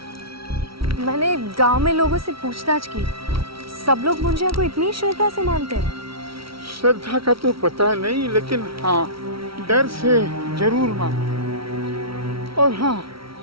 मैंने गांव में लोगों से पूछताछ की, सब लोग मुंजिया को इतनी श्रद्धा से मानते हैं। श्रद्धा का तो पता नहीं, लेकिन हाँ डर से जरूर मानो। और हाँ,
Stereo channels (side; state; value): left; late; 0.75 ms